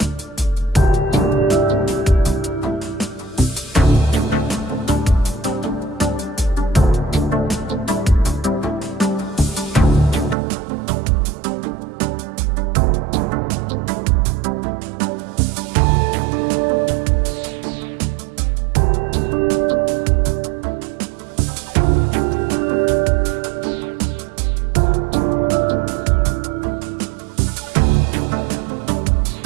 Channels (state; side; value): drops out; left; at 10.4 s